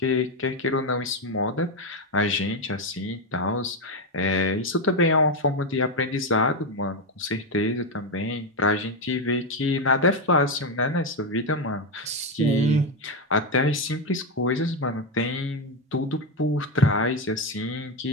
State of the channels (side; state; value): both; normal; correlation 0.08